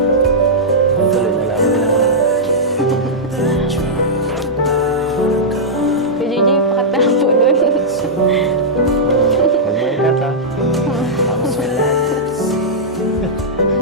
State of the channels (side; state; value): both; normal; correlation -0.10